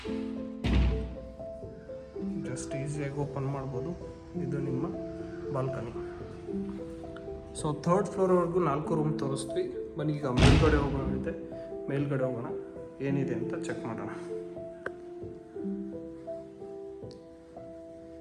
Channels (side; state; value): both; identical; correlation 1.00